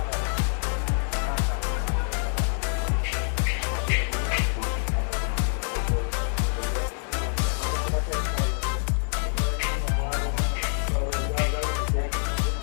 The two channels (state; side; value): silent; right; digital silence